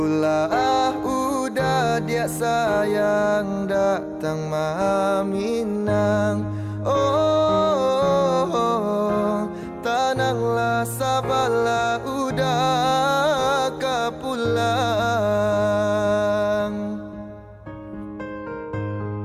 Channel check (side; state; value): both; identical; correlation 1.00